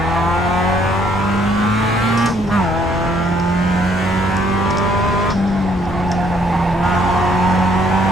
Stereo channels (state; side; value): normal; both; correlation 0.67